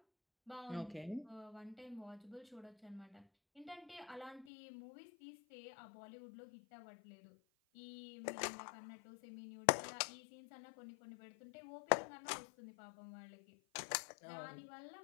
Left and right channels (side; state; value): right; drops out; at 4.5 s